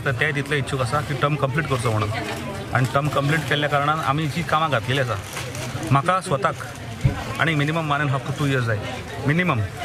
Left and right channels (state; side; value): identical; both; correlation 1.00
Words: ते तितले इच्छूक आसा की टर्म कंप्लीट करचो म्हणून, आणि टर्म कंप्लीट केल्ल्या कारणान आमी जी कामां घातलेली आसा म्हाका स्वताक आणि मिनिमम 1.5 to 2 years जाय मिनिमम